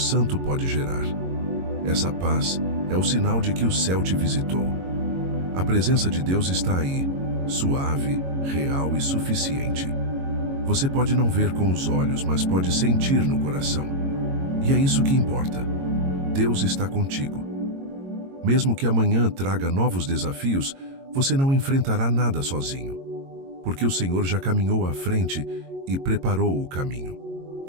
pode gerar. Essa paz é o sinal de que o céu te visitou. A presença de Deus está aí, suave, real e suficiente. Você pode não ver com os olhos, mas pode sentir no coração. E é isso que importa. Deus está contigo. Mesmo que amanhã traga novos desafios, você não enfrentará nada sozinho, porque o Senhor já caminhou à frente e preparou o caminho.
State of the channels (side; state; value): left; late; 22 ms